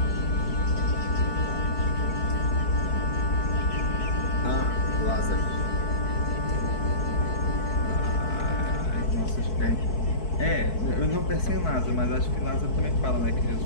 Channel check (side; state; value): right; late; 4.6 ms